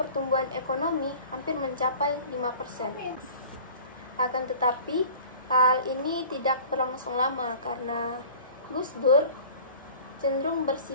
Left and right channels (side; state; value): both; inverted; correlation -0.44